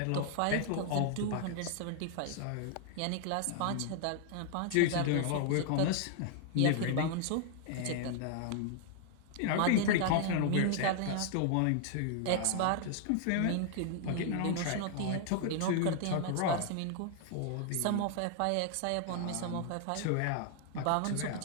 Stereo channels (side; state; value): both; different; correlation 0.00